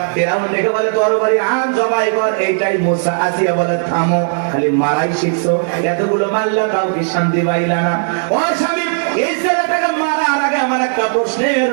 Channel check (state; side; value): silent; left; digital silence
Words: ফিরাউন দেখে বলে তরবারি আন, জবাই কর। এইটাই মুসা। আসিয়া বলে থামো, খালি মারাই শিখছো, এতগুলো মারলা তাও কি শান্তি পাইলা না? ও স্বামী, এই ছেলেটাকে মারার আগে আমার একটা প্রশ্নের